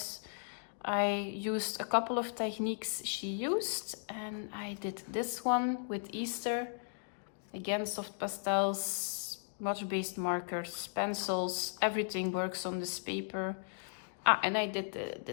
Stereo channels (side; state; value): right; silent; digital silence